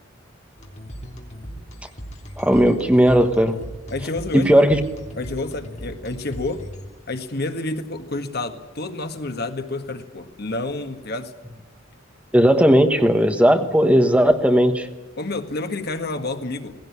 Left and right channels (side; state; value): both; normal; correlation 0.83